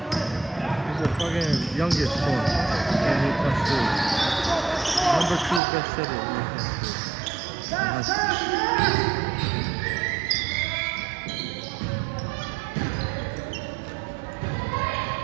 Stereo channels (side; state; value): left; drops out; at 5.6 s